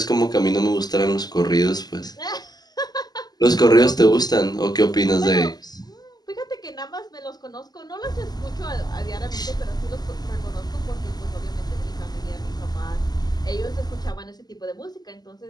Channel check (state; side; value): late; right; 0.20 ms